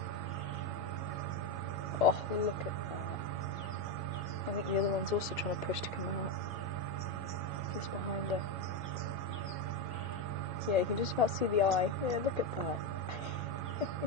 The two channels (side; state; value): both; normal; correlation 0.09